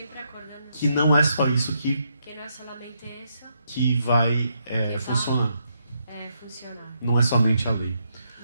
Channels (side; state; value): both; inverted; correlation -0.78